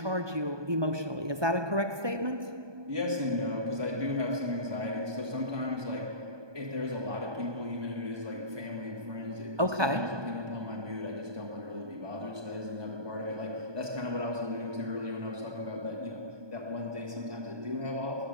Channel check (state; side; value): late; left; 1.2 ms